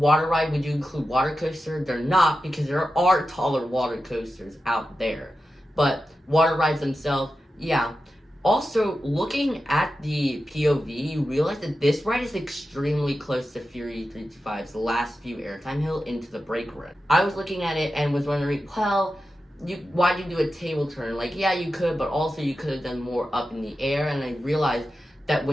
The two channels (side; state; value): both; normal; correlation 0.91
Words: ride, would you include water coaster? They're not, because there are taller water coasters out there. But water rides themselves, yeah. Also, looking at the POV, you realize that this ride is extremely close to Fury 325's last few airtime hill into the brake run. I was looking at it and was wondering, well, why did you do a table turn? Like, yeah, you could, but also you could have done more up in the air. And I realized that